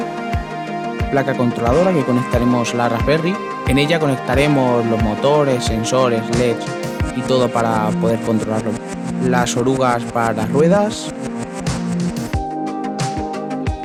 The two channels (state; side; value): identical; both; correlation 1.00